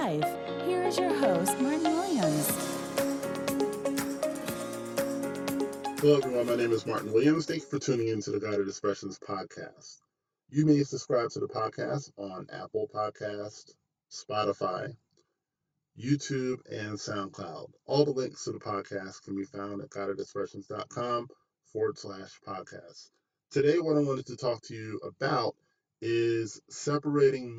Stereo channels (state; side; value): identical; both; correlation 1.00